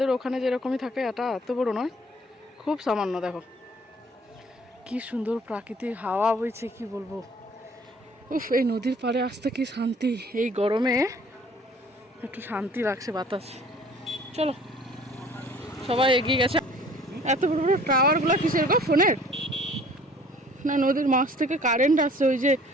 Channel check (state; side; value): normal; both; correlation 0.53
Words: ওখানে যেরকমই থাকে এটা এত বড় নয়, খুব সামান্য। দেখো কি সুন্দর প্রাকৃতিক হাওয়া বইছে, কি বলবো। উফ, এই নদীর পাড়ে আসতে কি শান্তি, এই গরমে একটু শান্তি লাগছে বাতাস। চলো, সবাই এগিয়ে গেছে। এত বড় বড় টাওয়ারগুলো কিসের গো, ফোনের না নদীর মাছ থেকে কারেন্ট আসছে? ওই যে